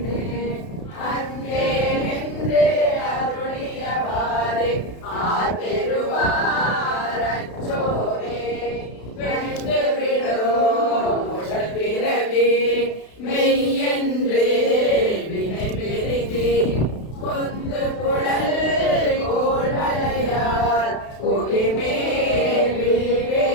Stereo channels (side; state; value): right; late; 32 ms